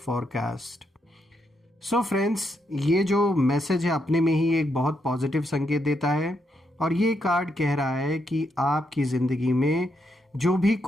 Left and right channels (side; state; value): both; normal; correlation 0.79